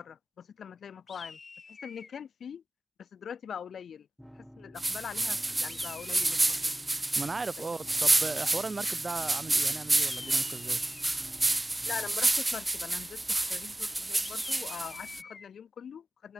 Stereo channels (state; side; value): normal; both; correlation 0.98